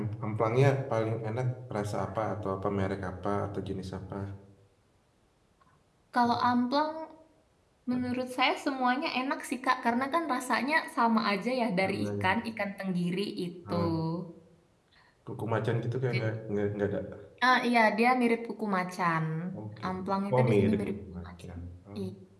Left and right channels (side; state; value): both; identical; correlation 1.00